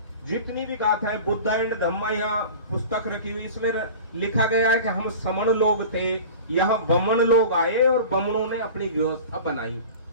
जितनी भी गाथाएं बुद्ध एंड धम्मा यहाँ पुस्तक रखी हुई, इसमें लिखा गया है कि हम समण लोग थे, यहाँ बमन लोग आए और बमनों ने अपनी व्यवस्था बनाई।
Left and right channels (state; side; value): inverted; both; correlation -0.37